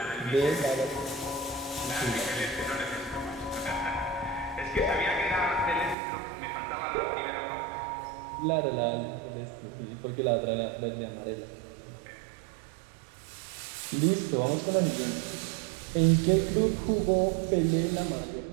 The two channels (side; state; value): left; drops out; at 6.0 s